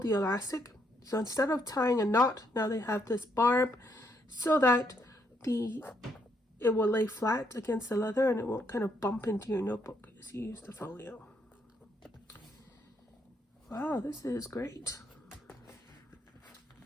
the elastic. So instead of tying a knot, now they have this barb so that it will lay flat against the leather and it won't kind of bump into your notebook as you use the folio. Wow, this is great.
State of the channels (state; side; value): normal; both; correlation 0.74